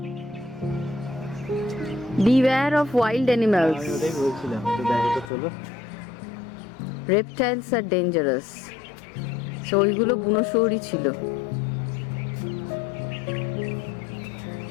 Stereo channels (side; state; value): right; drops out; at 5.3 s